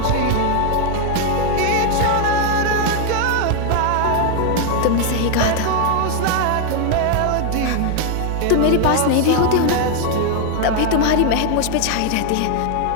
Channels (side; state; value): both; different; correlation 0.00